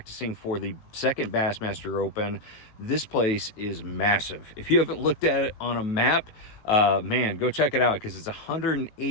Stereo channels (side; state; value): right; late; 19 ms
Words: for the second Bassmaster Open. This place is massive. If you haven't looked at it on a map, man, go check it out, because it's